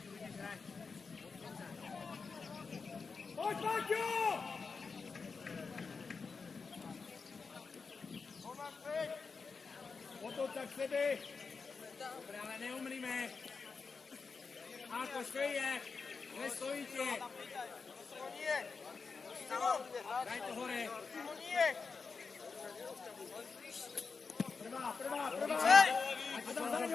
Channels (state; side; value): quieter; right; 4.9 dB